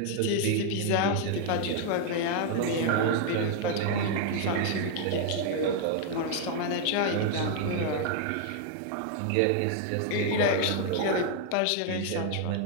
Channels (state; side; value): different; both; correlation 0.00